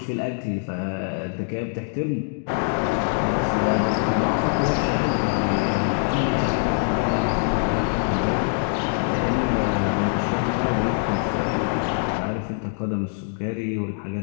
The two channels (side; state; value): right; silent; 63 dB below the other